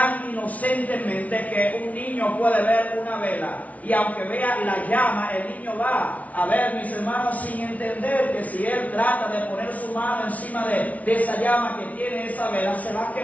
inocentemente que un niño puede ver una vela y aunque vea la llama, el niño va a ver, mis hermanos, sin entender que si él trata de poner su mano encima de esa llama que tiene esa vela, se va a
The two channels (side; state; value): right; late; 0.069 ms